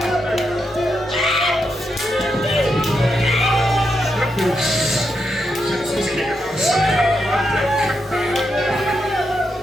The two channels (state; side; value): normal; both; correlation 0.83